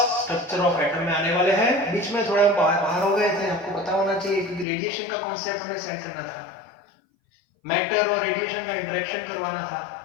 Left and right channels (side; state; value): right; drops out; at 4.7 s